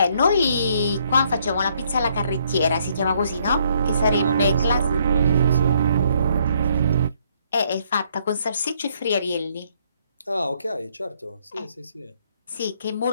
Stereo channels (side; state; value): both; inverted; correlation -0.68